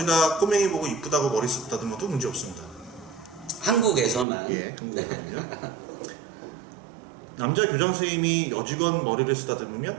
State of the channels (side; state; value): left; drops out; at 4.2 s